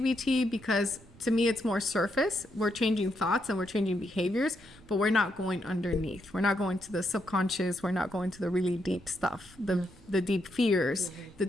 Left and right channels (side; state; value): right; noise; rumble, 25 dB below the sound